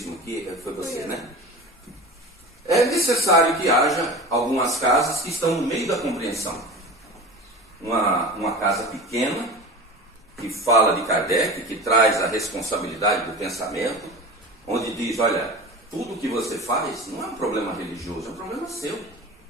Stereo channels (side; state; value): both; normal; correlation 0.33